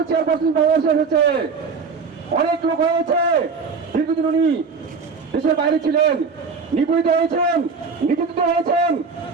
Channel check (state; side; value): quieter; left; 5.0 dB